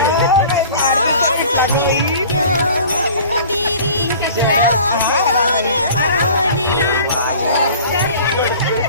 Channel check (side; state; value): both; inverted; correlation -0.45